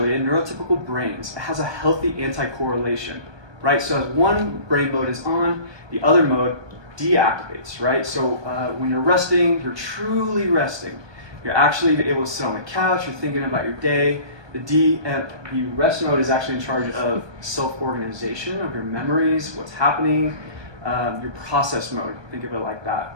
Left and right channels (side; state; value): left; late; 1.2 ms